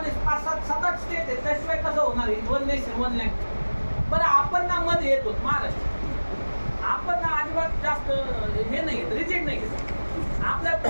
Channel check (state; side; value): inverted; both; correlation -1.00